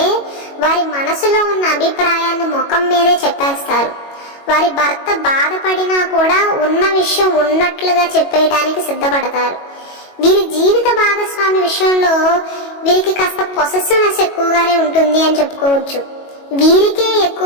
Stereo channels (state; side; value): late; right; 22 ms